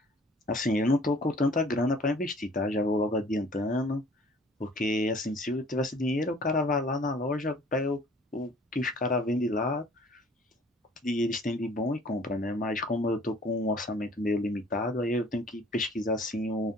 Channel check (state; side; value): normal; both; correlation 0.54